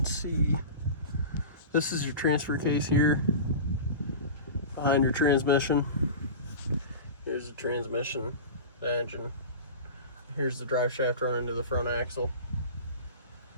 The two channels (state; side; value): inverted; both; correlation -0.31